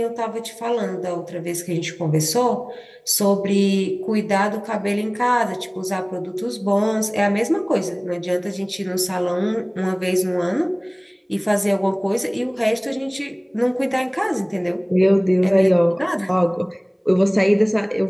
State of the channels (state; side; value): identical; both; correlation 1.00